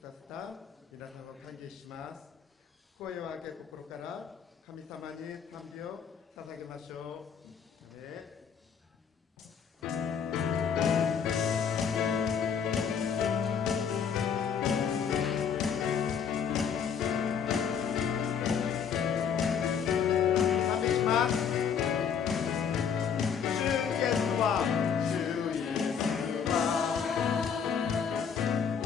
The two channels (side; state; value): right; quieter; 7.2 dB